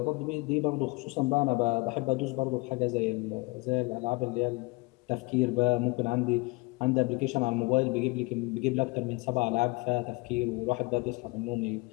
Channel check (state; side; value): quieter; right; 25.6 dB